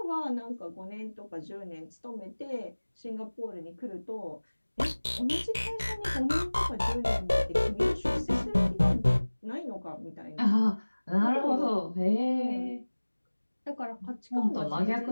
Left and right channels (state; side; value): inverted; both; correlation -1.00